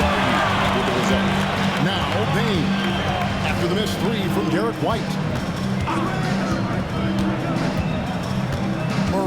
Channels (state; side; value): identical; both; correlation 1.00